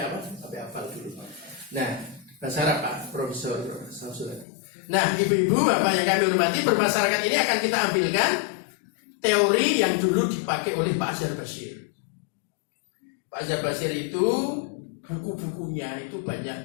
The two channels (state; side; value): drops out; right; at 4.5 s